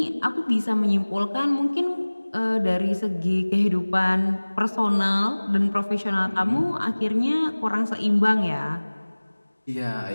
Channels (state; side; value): inverted; both; correlation -1.00